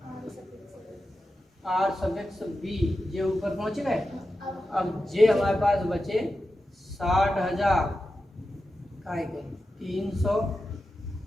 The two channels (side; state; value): both; normal; correlation 0.91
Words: R suffix B जे ऊपर पहुंच गए। अब जे हमारे पास बचे 60,000 का 300